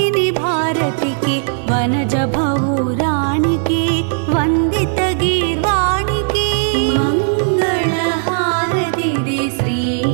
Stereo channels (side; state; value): left; silent; 63 dB below the other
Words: భారతికి వనజ భౌరానికి వందిత గీర్వాణికి మంగళహారతిది శ్రీ